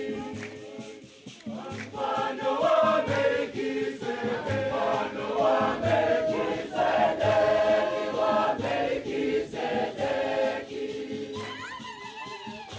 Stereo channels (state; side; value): identical; both; correlation 1.00